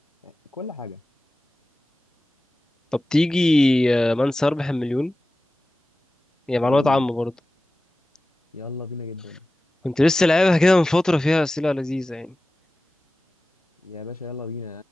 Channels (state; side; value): normal; both; correlation 0.95